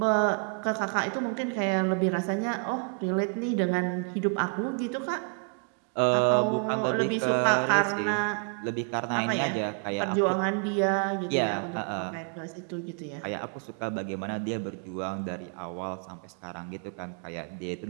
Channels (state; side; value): quieter; left; 39.2 dB